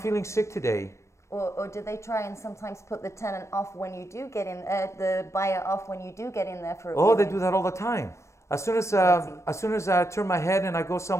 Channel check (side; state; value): right; late; 0.14 ms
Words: sick today. Or do they try and sometimes put the tenant off when you do get in, the buyer off when you do get in there for a Oh, they viewing? do that all the time. As soon as I turn my head and I go